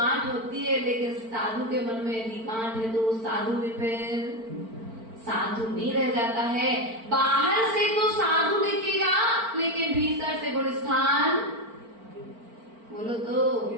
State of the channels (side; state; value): left; late; 4.4 ms